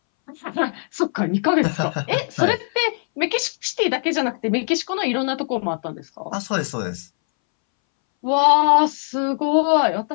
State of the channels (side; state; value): right; silent; 63 dB below the other